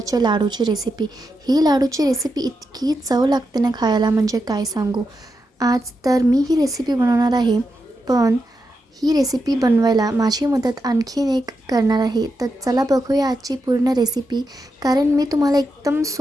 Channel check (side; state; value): both; normal; correlation 0.86